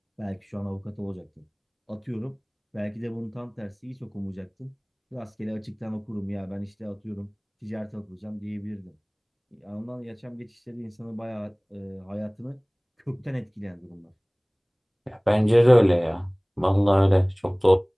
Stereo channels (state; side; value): identical; both; correlation 1.00